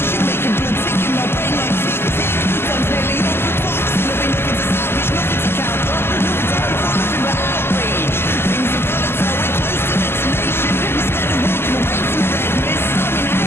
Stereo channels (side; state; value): right; late; 0.12 ms